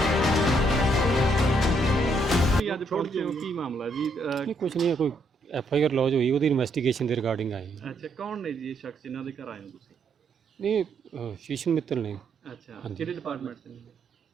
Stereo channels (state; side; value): normal; both; correlation 0.73